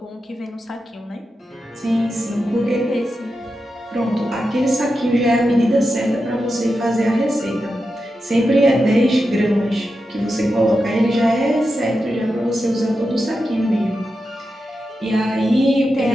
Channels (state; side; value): normal; both; correlation 0.89